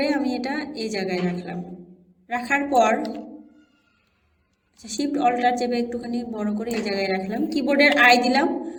আমি এটা এই জায়গায় রাখলাম। রাখার পর শিফট অল্টার চেপে একটুখানি বড় করে এই জায়গায় রাখলাম। কিবোর্ডের আই দিলাম,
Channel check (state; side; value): identical; both; correlation 1.00